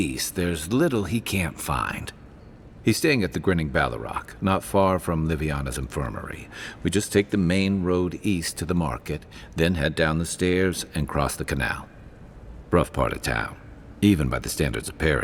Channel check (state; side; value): identical; both; correlation 1.00